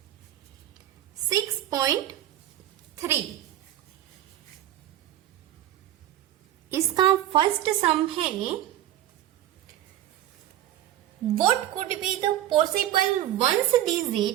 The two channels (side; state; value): left; quieter; 12.8 dB